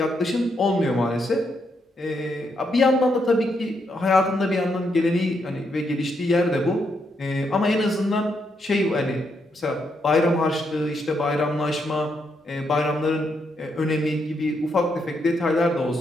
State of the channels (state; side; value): normal; both; correlation 0.79